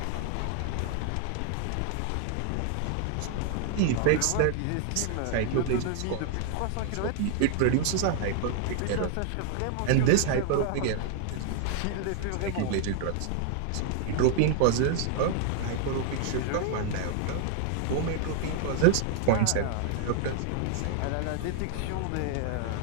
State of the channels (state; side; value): different; both; correlation 0.00